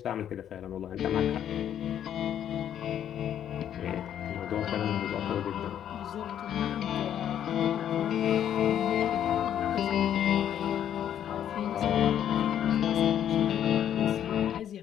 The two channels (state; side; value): quieter; right; 10.1 dB